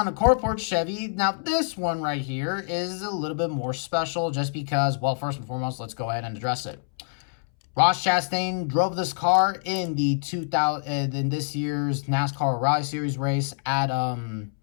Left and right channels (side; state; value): right; silent; 61 dB below the other